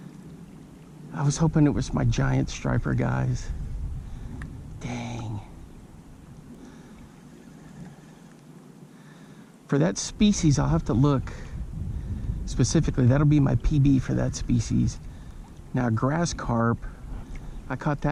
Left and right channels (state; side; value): identical; both; correlation 1.00